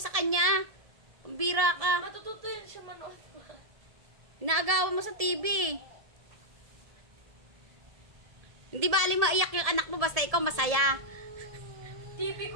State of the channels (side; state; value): left; late; 1.7 ms